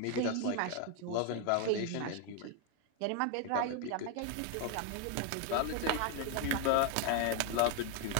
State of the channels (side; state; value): both; different; correlation 0.01